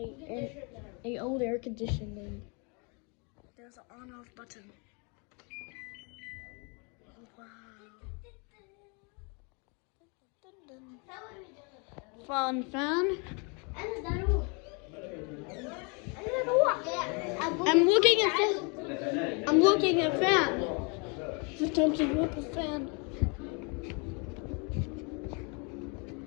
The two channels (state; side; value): quieter; right; 33.4 dB